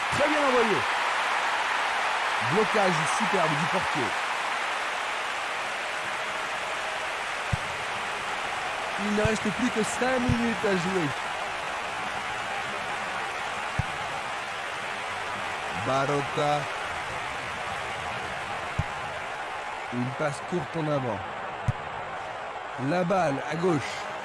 Très bien envoyé. Blocage superbe du portier. Il ne reste plus que 5 minutes à jouer. Barota. Une passe courte en avant. La balle à gauche.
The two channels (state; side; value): identical; both; correlation 1.00